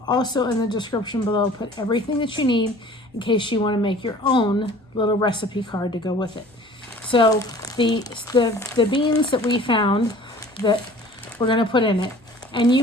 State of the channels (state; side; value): normal; both; correlation 0.47